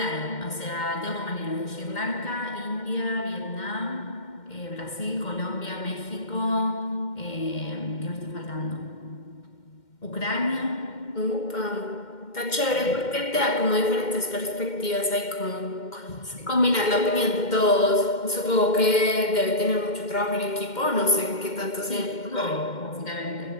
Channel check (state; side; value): late; right; 2.1 ms